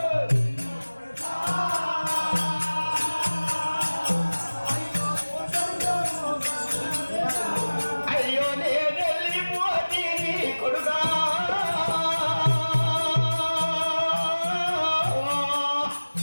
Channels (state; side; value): inverted; both; correlation -1.00